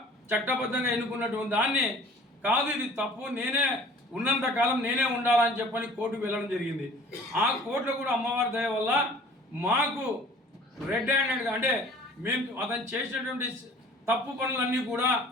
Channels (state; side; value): normal; both; correlation 0.49